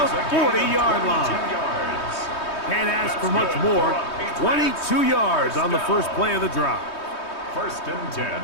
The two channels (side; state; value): right; late; 3.2 ms